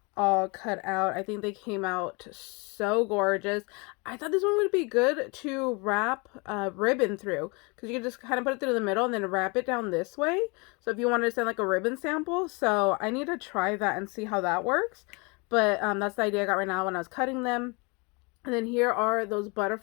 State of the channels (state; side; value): quieter; right; 29.8 dB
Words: all cut out. I think they came out so gorgeous. I thought this one would be good to wrap ribbon through, because you can just kind of put it through the middle and then wrap it down this way. So if you wanted to send like a ribbon sample, so I need to try that and see how that works. But that's the idea I got right now when I was cutting them. And then here are those